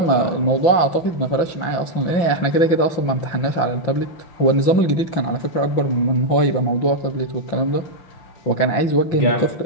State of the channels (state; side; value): late; right; 5.9 ms